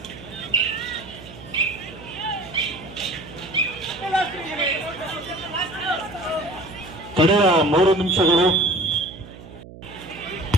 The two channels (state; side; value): noise; right; hum, 17 dB below the sound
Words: ಕಡೆಯ 3 ನಿಮಿಷಗಳು.